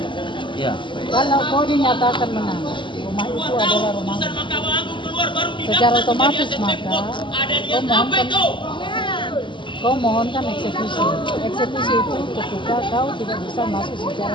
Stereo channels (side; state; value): right; late; 0.24 ms